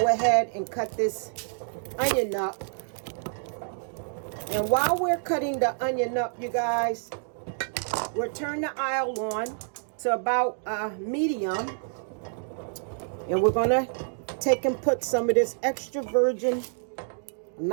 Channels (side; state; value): left; silent; digital silence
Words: ahead and cut this onion up. And while we're cutting the onion up, you guys, we'll turn the oil on to about medium. And we're going to take and put some of this extra virgin,